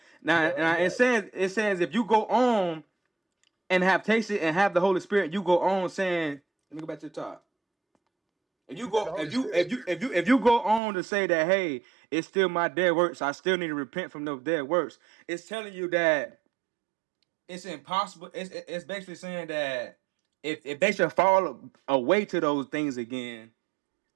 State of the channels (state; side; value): drops out; left; at 10.8 s